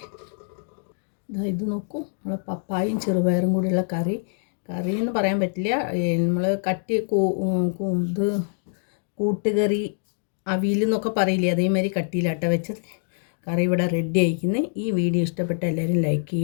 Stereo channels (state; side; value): silent; right; digital silence